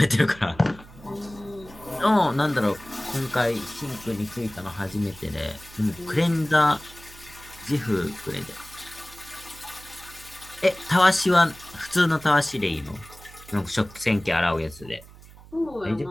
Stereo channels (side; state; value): right; noise; hum, 20 dB below the sound